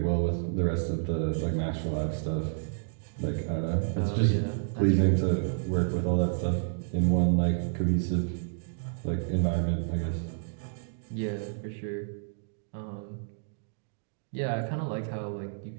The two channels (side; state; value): left; silent; digital silence